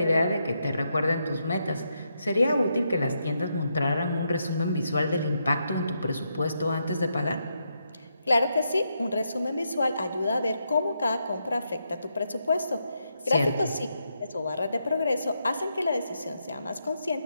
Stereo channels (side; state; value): both; inverted; correlation -0.81